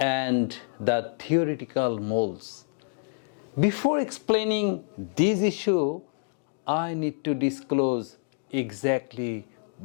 the theoretical moles. Before explaining this issue, I need to disclose exactly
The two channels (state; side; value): silent; right; digital silence